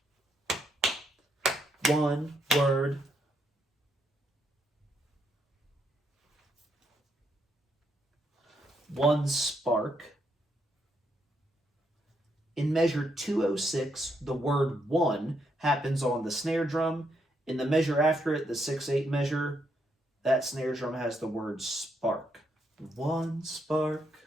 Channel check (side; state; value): both; normal; correlation 0.77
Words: One word. One spark. In measure 206, the word 1 happens on the snare drum. In the measure after it, the 6/8 measure, that snare drum has the word spark. One spark.